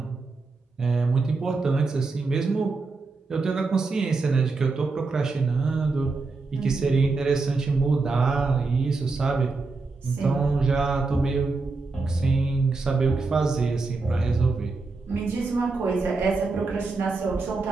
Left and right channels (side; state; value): left; quieter; 3.9 dB